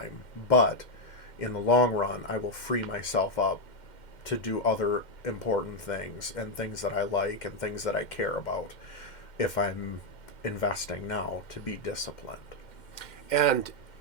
but in the long run, I will free myself up to do other important things and things that I like and things that I care about if I'm investing now to be disciplined. And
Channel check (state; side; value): late; right; 2.1 ms